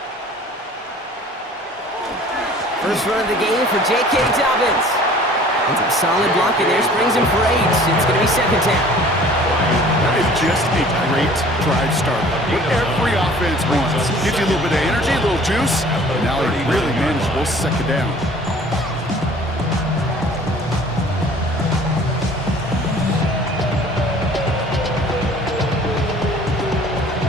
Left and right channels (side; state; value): both; normal; correlation 0.50